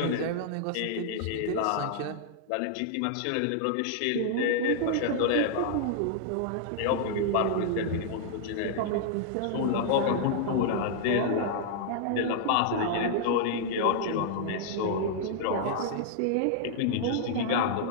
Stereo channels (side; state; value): both; different; correlation -0.01